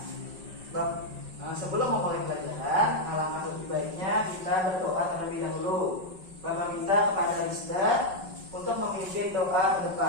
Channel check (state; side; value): late; left; 5.4 ms